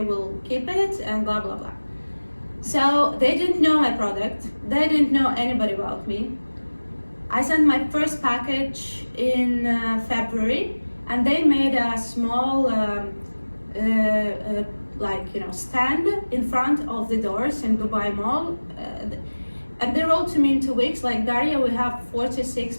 will keep it, and blah blah blah. So they didn't know my product. They didn't know anybody about me. I sent my first package in February, and they made a small stand in front of the doors in Dubai Mall, and they wrote to me in 2 weeks, like, Daria, we have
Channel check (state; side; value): inverted; both; correlation -1.00